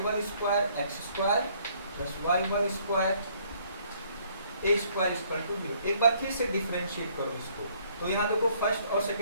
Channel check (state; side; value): inverted; both; correlation -0.64